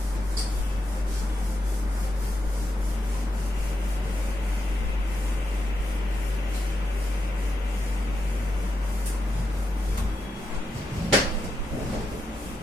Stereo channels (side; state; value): both; normal; correlation 0.85